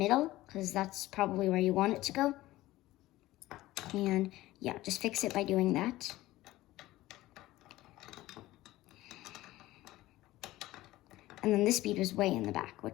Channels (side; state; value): right; quieter; 16.8 dB